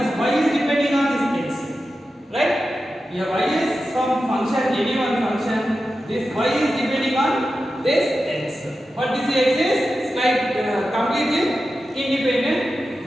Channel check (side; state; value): both; normal; correlation 0.92